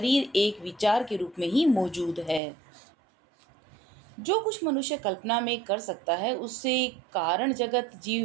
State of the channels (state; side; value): drops out; left; at 2.4 s